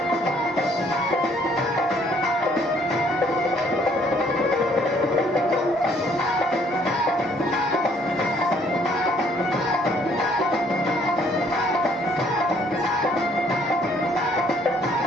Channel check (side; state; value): both; normal; correlation 0.63